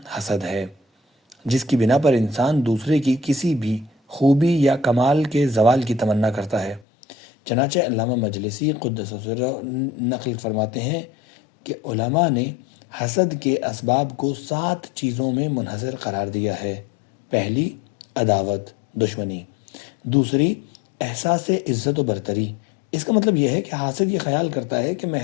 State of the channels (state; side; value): drops out; right; at 6.9 s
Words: حسد ہے، جس کی بنا پر انسان دوسرے کی کسی بھی خوبی یا کمال کے زوال کی تمنا کرتا ہے۔ چنانچہ علامہ مجلسی قدس سرہ نقل فرماتے ہیں کہ علماء نے حسد کے اسباب کو 7 چیزوں میں منحصر قرار دیا ہے۔ پہلی، عداوت، دشمنی۔ دوسری، احساس عزت و برتری۔ اس کا مطلب یہ ہے کہ حاسد یہ خیال کرتا ہے کہ